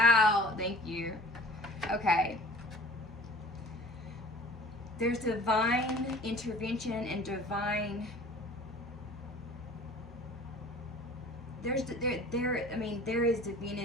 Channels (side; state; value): both; normal; correlation 0.46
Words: thank you. Okay. There's divine intervention and divine... there is